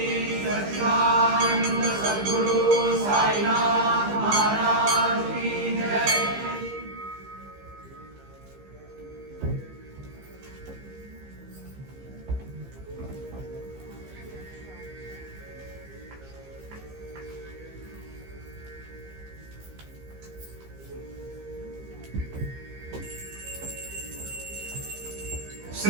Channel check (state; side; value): late; left; 15 ms